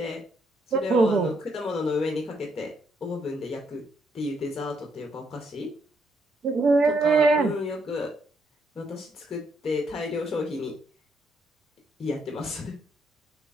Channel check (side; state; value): both; normal; correlation 0.74